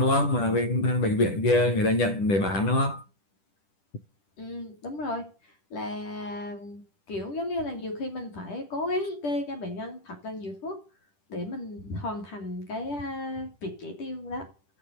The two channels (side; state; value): right; late; 10 ms